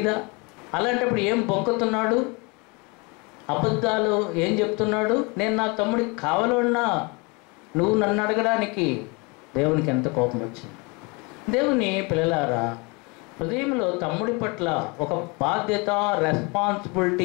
అలాంటప్పుడు ఏం బొంకుతున్నాడు? అబద్ధాలు ఏం చెప్తున్నాడు? నేను నా తమ్ముడికి కావలివాడనా నువ్వు నన్ను అడగడానికి? దేవునికి ఎంత కోపం వచ్చింది. దేవుని పిల్లలారా, హృదయంలో తమ్ముడి పట్ల ఒక బాధ్యత,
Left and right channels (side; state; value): right; quieter; 28.8 dB